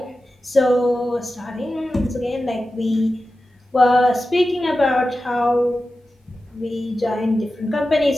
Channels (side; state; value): both; normal; correlation 0.93